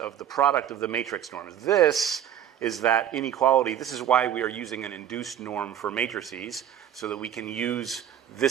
the product of the matrix norms. This is that inequality. This is why we are using an induced norm for matrices, so that we can use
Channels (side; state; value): left; quieter; 10.1 dB